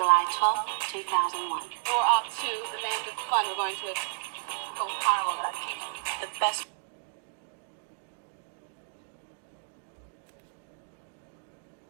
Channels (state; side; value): silent; left; digital silence